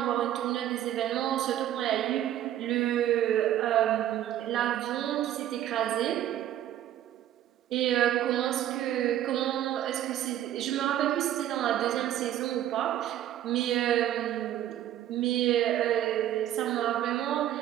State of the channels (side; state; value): left; quieter; 12.1 dB